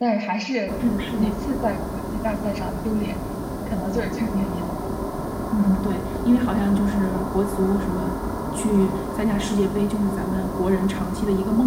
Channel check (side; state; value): both; identical; correlation 1.00